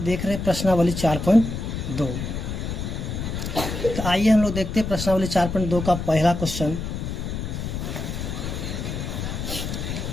रहे हैं प्रश्नावली 4.2। तो आइए हम लोग देखते हैं प्रश्नावली 4.2 का पहला क्वेश्चन।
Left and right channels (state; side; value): noise; left; rumble, 4 dB below the sound